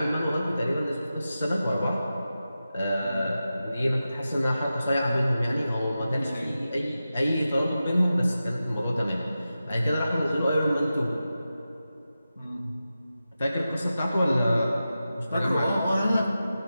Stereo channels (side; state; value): both; inverted; correlation -0.92